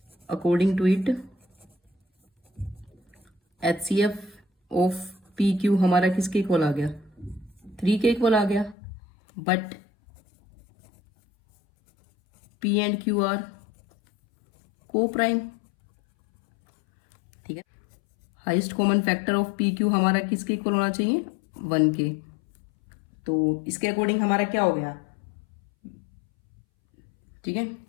to it HCF of P Q हमारा किसके इक्वल आ गया, 3 के इक्वल आ गया। But P and Q are को प्राइम। ठीक है, highest common factor of P Q हमारा किसके इक्वल होना चाहिए, 1 के। तो इसके अकॉर्डिंग हमारा क्या हो गया, ठीक है,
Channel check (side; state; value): right; drops out; at 8.8 s